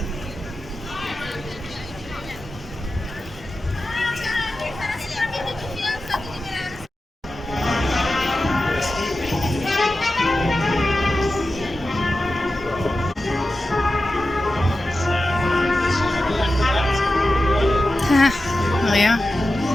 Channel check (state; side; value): normal; both; correlation 0.93